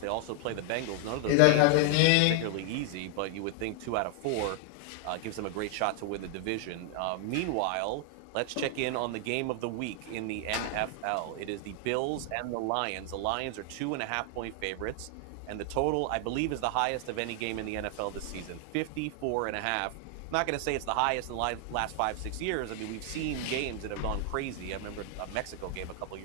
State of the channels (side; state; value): both; different; correlation 0.00